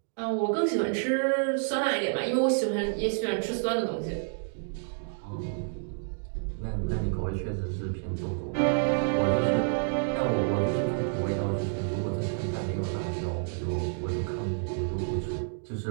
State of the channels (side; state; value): left; silent; digital silence